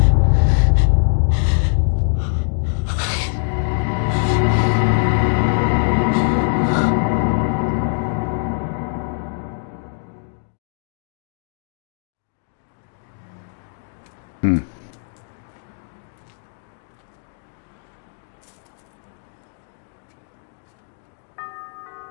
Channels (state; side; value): silent; right; 65 dB below the other